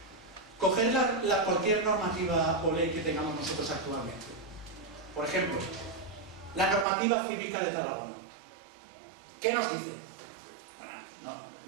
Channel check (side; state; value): left; drops out; at 6.9 s